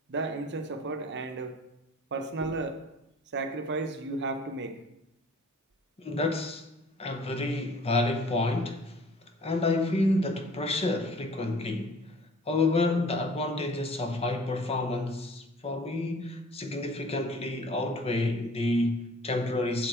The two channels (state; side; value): normal; both; correlation 0.50